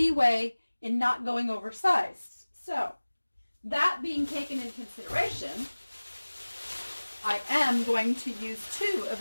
in not going oversized. So that being taken into consideration, I am going to use 2 of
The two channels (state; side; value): inverted; both; correlation -1.00